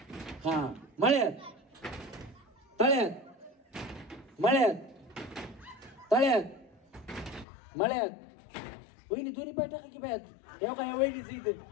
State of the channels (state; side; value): drops out; right; at 7.5 s